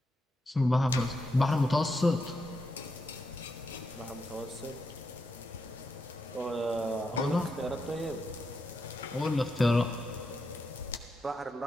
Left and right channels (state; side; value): normal; both; correlation 0.84